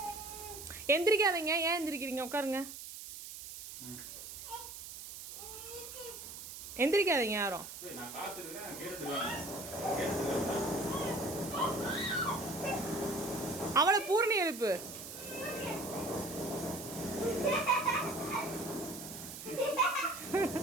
எந்திரிக்காதீங்க. ஏன் எந்திரிக்கிறீங்க? உட்காருங்க. எந்திரிக்காதீங்க யாரும். அவளை பூர்ணி எழுப்பு.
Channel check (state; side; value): noise; right; hiss, 11 dB below the sound